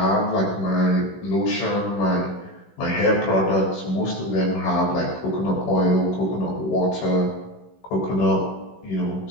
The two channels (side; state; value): right; late; 16 ms